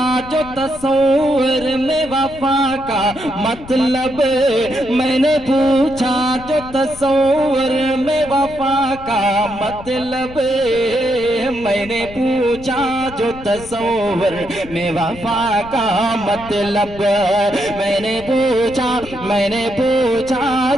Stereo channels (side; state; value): left; noise; rumble, 16 dB below the sound